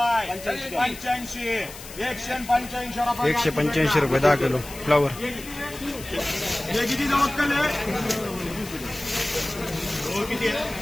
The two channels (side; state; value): left; noise; hiss, 15 dB below the sound